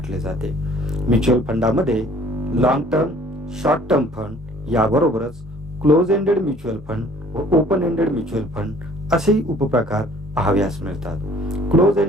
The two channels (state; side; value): normal; both; correlation 0.54